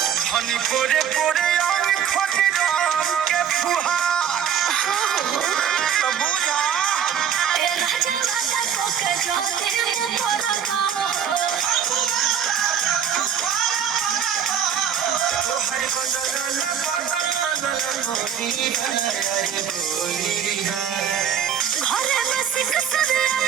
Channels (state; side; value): quieter; left; 8.5 dB